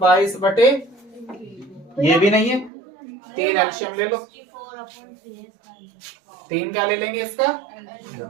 22 बटे, ये भी नहीं है। 3 एलसीएम ले लो। 3 क्या ले लेंगे इसका?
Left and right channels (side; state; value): left; drops out; at 2.7 s